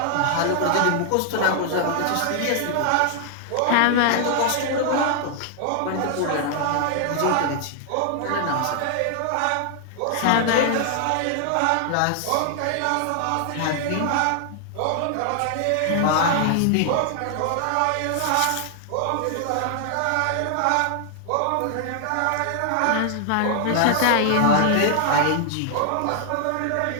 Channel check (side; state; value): both; different; correlation 0.00